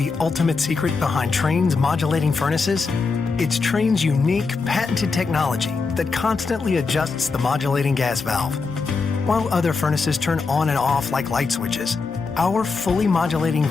ultimate secret behind Trane's modulating furnaces? It's Trane's unique, patented technology that constantly adjusts the modulating gas valve. While other furnaces turn on and off like light switches, our fully modulating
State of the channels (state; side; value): quieter; right; 4.4 dB